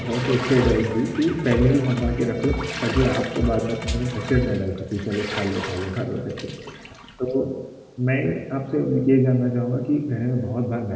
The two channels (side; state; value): both; identical; correlation 1.00